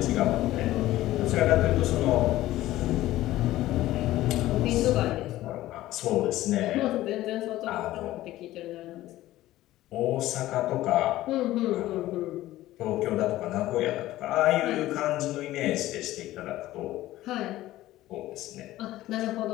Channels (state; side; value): quieter; right; 15.6 dB